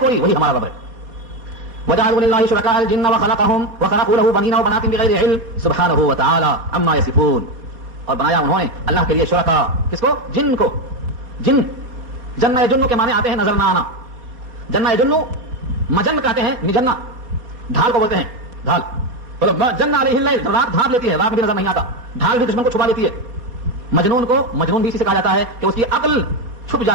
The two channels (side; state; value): left; late; 4.1 ms